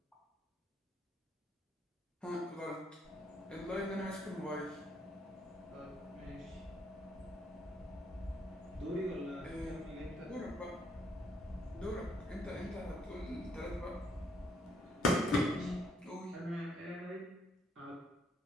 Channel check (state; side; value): normal; both; correlation 0.71